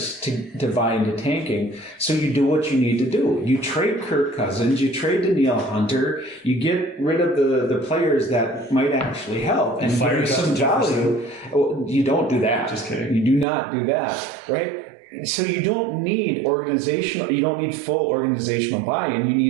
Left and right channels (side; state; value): left; drops out; at 13.5 s